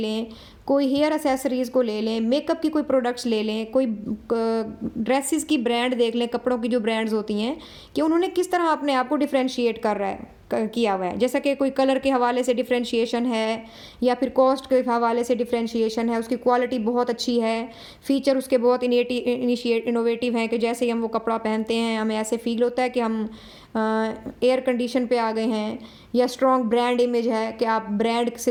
कोई हेयर एसेसरीज़ को ले लें, मेकअप की कोई प्रोडक्ट्स ले लें, कोई ड्रेसेस की ब्रांड देख लें, कपड़ों की जो ब्रांड्स होती हैं, कि उन्होंने किस तरह अपने आप को डिफरेंशिएट कर रहा है किया हुआ है। जैसा कि कोई कलर के हवाले से डिफरेंशिएशन है, या फिर कॉस्ट के हवाले से डिफरेंशिएशन है, उसकी क्वालिटी बहुत अच्छी है, फीचर उसके बहुत इनोवेटिव हैं कि जैसे ही हम वो कपड़ा पहनते हैं हमें ऐसे फील होता है कि हम एयर कंडीशन पे आ गए हैं, या स्ट्रॉन्ग ब्रांड इमेज है कि आप ब्रांड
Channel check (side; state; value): both; identical; correlation 1.00